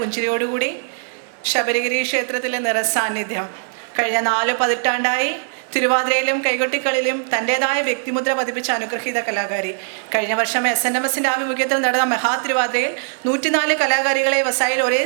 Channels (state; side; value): silent; left; digital silence